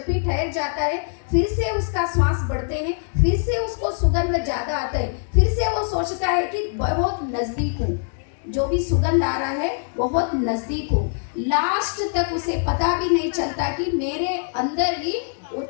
भी ठहर जाता है, फिर से उसका श्वास बढ़ते हैं, फिर से उसको सुगंध ज्यादा आता है, फिर से वो सोचता है कि बहुत नजदीक हूँ, जो भी सुगंध आ रहा है बहुत नजदीक हूँ। लास्ट तक उसे पता भी नहीं चलता कि मेरे अंदर ही वो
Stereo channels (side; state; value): right; silent; 63 dB below the other